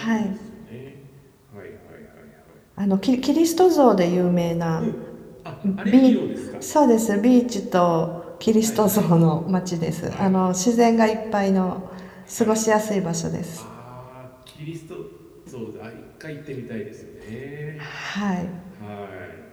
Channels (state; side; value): identical; both; correlation 1.00